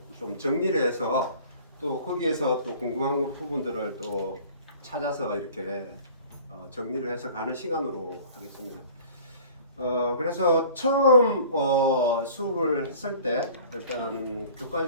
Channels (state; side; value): inverted; both; correlation -0.46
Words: 좀 정리를 해서 또 거기에서 또 궁금한 부분들을 또 찾아서 이렇게 정리를 해서 가는 시간으로 하겠습니다. 그래서 처음 수업을 했을 때 일단